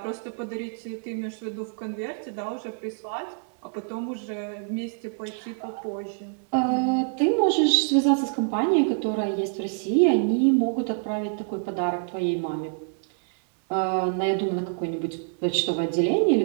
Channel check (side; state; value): left; silent; digital silence